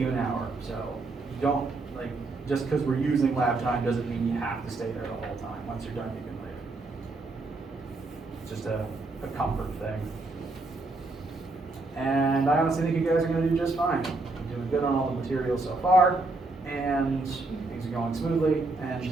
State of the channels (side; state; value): left; quieter; 3.3 dB